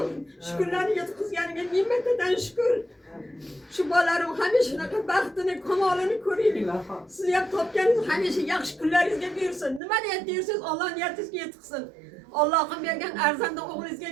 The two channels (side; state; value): left; drops out; at 9.8 s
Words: shu kunlarni yetkazganiga ming martadan shukr. Shu bolalarim hamisha shunaqa baxtini, kamolini ko'raylik. Siz ham topganingiz hamisha yaxshi kunlaringizga bersin. Nima niyat deysiz, Alloh niyatingizga yetkazsin. Allohim bergan arzanda o'g'lingizga